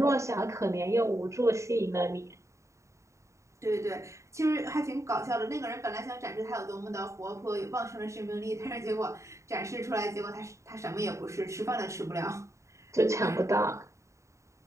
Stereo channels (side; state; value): left; late; 0.14 ms